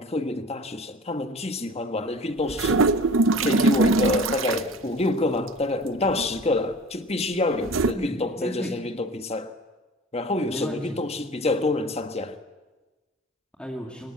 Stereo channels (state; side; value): normal; both; correlation 0.41